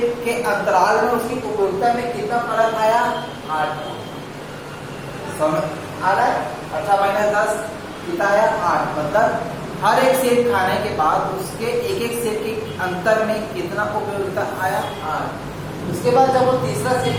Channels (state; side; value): identical; both; correlation 1.00